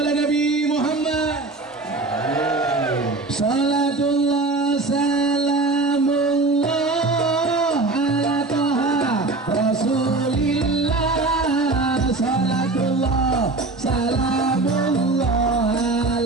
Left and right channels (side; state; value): left; quieter; 3.3 dB